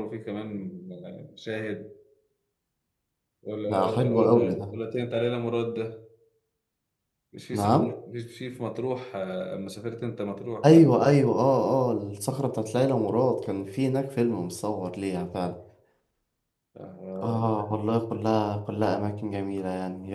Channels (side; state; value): both; identical; correlation 1.00